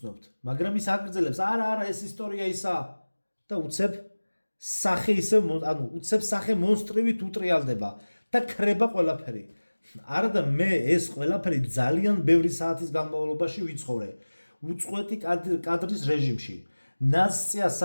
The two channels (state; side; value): inverted; both; correlation -1.00